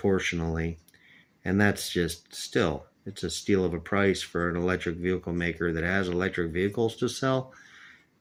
And that's just still, it's a steal of a price for an electric vehicle maker that has electric vehicles to sell.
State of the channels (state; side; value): identical; both; correlation 1.00